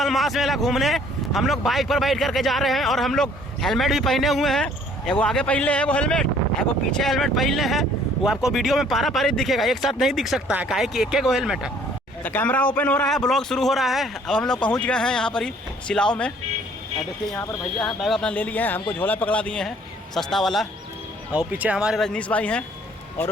मेला घूमने। हम लोग बाइक पर बैठ करके जा रहे हैं और हम लोग हेलमेट भी पहने हुए हैं। एगो आगे पहले है वो हेलमेट, एगो पीछे हेलमेट पहले है। वो आपको वीडियो में पारा पारी दिखेगा, एक साथ नहीं दिख सकता है, काहे कि एक गो हेलमेट है। तो कैमरा ओपन हो रहा है, ब्लॉग शुरू हो रहा है। अब हम लोग पहुँच गए हैं यहाँ पर ही सिलाव में। देखिए यहाँ पर भैया हैं, बैग अपना ले लिए हैं, हमको झोला पकड़ा दिए हैं सस्ता वाला। और पीछे हमारे रजनीश भाई हैं और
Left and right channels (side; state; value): both; normal; correlation 0.58